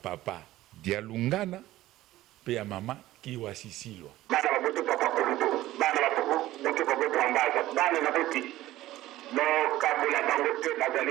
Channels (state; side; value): quieter; left; 15.6 dB